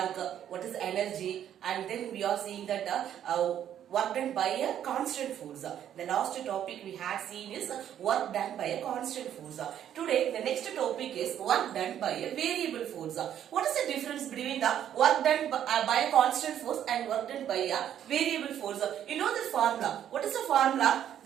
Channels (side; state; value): left; quieter; 10.3 dB